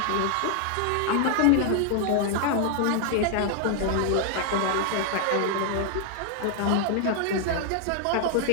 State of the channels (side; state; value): both; different; correlation 0.00